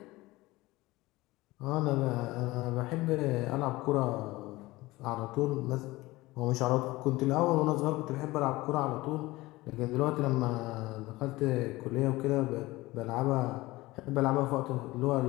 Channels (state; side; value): quieter; right; 19.8 dB